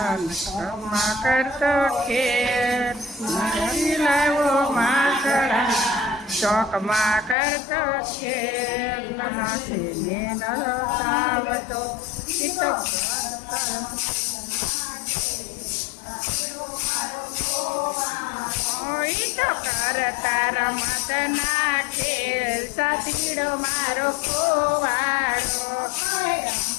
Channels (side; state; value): right; drops out; at 7.4 s